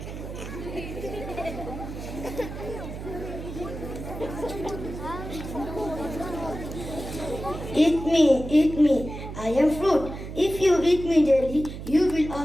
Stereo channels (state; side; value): noise; right; hum, 9 dB below the sound